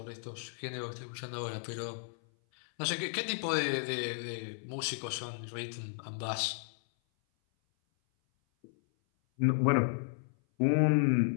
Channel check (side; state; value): right; silent; 55 dB below the other